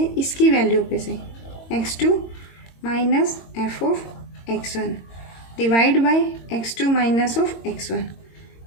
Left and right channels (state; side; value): late; right; 22 ms